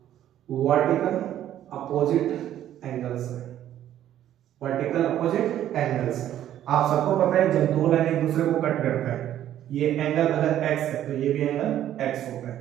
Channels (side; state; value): left; quieter; 11.7 dB